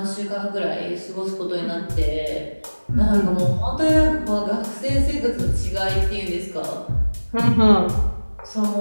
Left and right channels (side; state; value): both; inverted; correlation -1.00